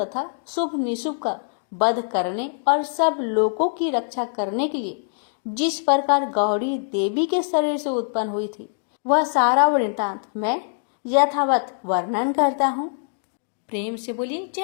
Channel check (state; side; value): silent; right; digital silence